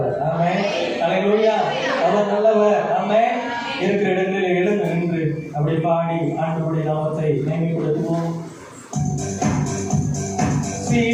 ஆமென். அல்லேலூயா. அவர் நல்லவர். ஆமென். இருக்கிற இடங்களில் எழுந்து நின்று அப்படி பாடி ஆண்டவருடைய நாமத்தை மேன்மைப்படுத்துவோம்.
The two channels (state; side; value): identical; both; correlation 1.00